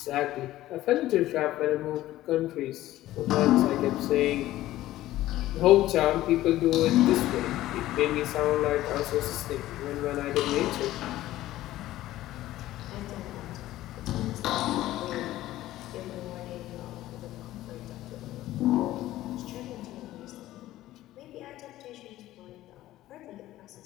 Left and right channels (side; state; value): right; quieter; 15.1 dB